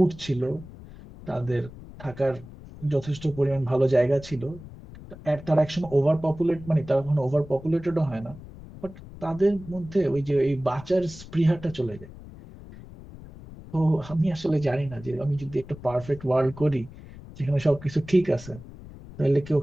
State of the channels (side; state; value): left; noise; rumble, 17 dB below the sound